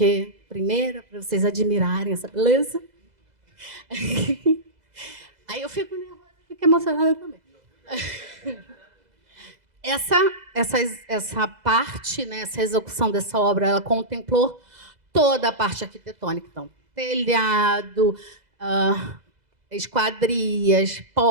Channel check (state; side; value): late; left; 2.0 ms